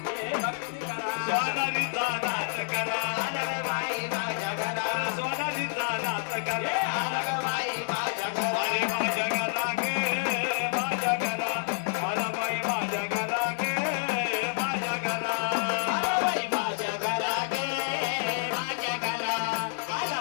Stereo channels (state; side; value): silent; right; digital silence